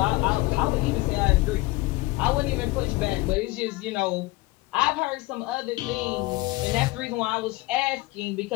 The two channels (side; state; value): right; quieter; 20.7 dB